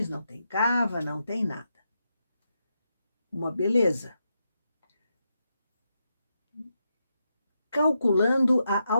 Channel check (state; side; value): inverted; both; correlation -0.84